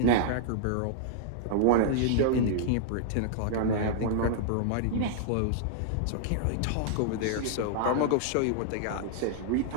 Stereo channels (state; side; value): different; both; correlation -0.01